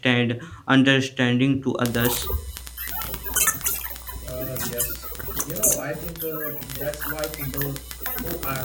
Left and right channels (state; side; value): identical; both; correlation 1.00